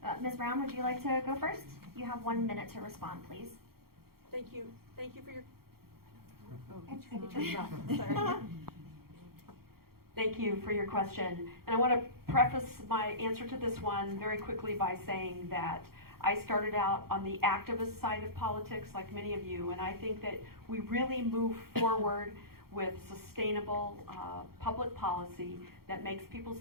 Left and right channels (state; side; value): late; left; 0.94 ms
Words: Ms. Brown, would you like to go first? You have 1 minute to respond, please. Thank you for your. Sorry. Thank you for your question. And I want to preface my answer to this one very quickly by saying that I started out on the activist side of politics like many of you, and I think that we really move forward with sustainable public policy that makes